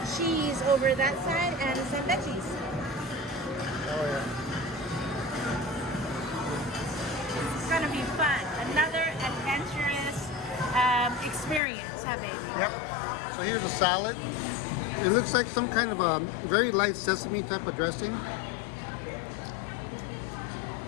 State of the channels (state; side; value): drops out; right; at 11.6 s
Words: cheese over that side and some veggies. Oh yeah. It's gonna be fun. Another adventurous experience, huh, baby? Yep. So here's a salad. It looks like some kind of a very light sesame type of dressing.